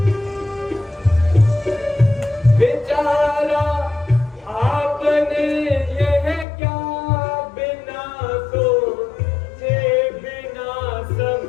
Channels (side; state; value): right; drops out; at 6.5 s